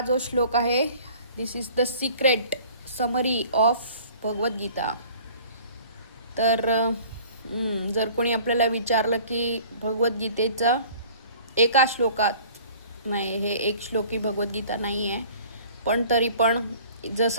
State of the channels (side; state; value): both; inverted; correlation -0.49